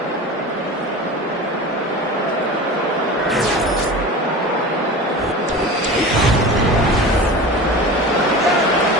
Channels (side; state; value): both; normal; correlation 0.33